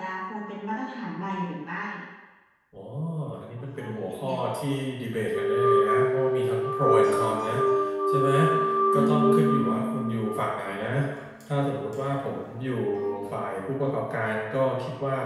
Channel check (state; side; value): identical; both; correlation 1.00